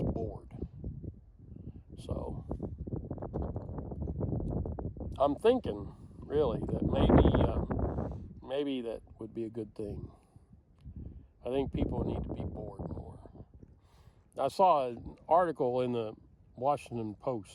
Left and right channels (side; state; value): both; identical; correlation 1.00